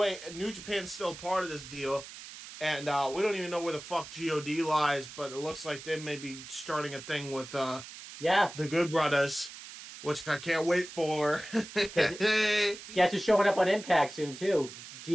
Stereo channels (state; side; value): noise; right; hiss, 14 dB below the sound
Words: New Japan's still part of this deal, and we don't even know where the fuck God lies, but it looks like they may be starting a thing with the Good Brothers, which I can't wait for. Guess who's showing up on Impact soon too?